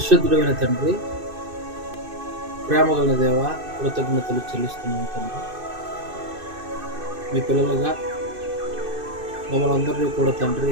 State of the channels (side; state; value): left; late; 2.6 ms